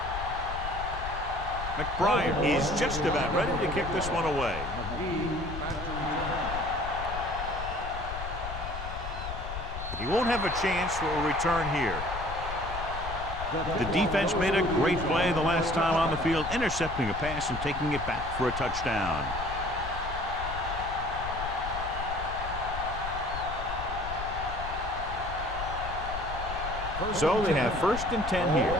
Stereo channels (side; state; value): left; noise; rumble, 8 dB below the sound